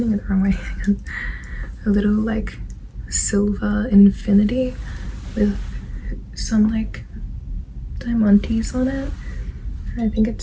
it the wrong way. A little like silver infinity with some like diamantes on it. I think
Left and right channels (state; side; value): identical; both; correlation 1.00